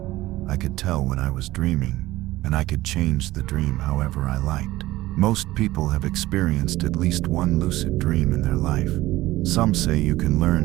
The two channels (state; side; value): quieter; left; 17.1 dB